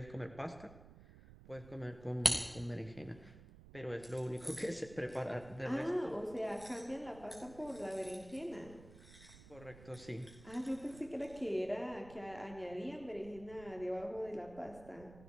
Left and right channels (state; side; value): noise; right; rumble, 17 dB below the sound